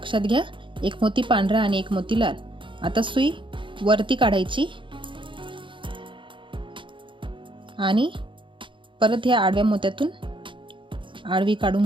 घ्या, एक मोती पांढरा आणि एक मोती लाल. आता सुई वरती काढायची आणि परत ह्या आडव्या मोत्यातून आडवी काढून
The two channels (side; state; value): left; late; 0.24 ms